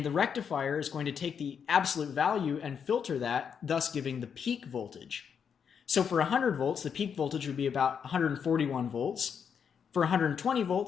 the rectifier is going to take the absolute value and filter that, thus giving the peak voltage. So for 100 volts, the peak voltage would be about 141 volts. For 120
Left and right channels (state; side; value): quieter; right; 7.1 dB